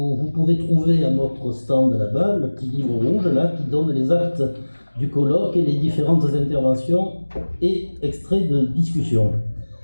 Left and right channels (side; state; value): both; inverted; correlation -1.00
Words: pouvez trouver à notre stand là-bas le petit livre rouge là, qui donne les actes du colloque et les différentes interventions et extraits de discussion.